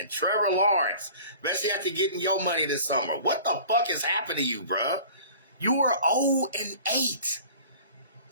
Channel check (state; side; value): inverted; both; correlation -0.44